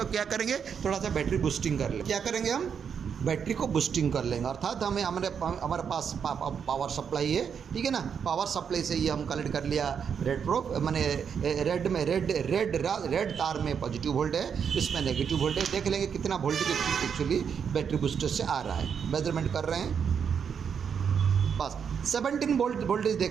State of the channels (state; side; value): quieter; left; 7.1 dB